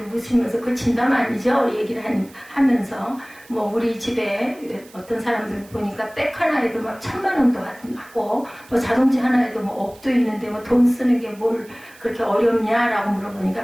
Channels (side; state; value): right; noise; hiss, 24 dB below the sound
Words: 웃으면서 그 진담 아니죠? 얘기를 하면서 뭐 우리 집에 어떤 사람들 보니까 백 하나에도 막 1,000만 원도 하고 뭐 자동차 하나에도 뭐 억도 있는데 뭐 돈 쓰는 게 뭘 그렇게 어렵냐라고